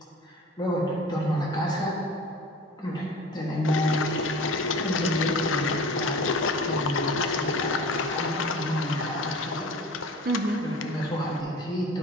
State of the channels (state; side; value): normal; both; correlation 0.40